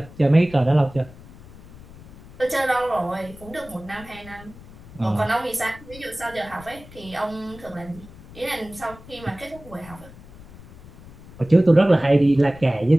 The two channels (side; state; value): left; noise; rumble, 19 dB below the sound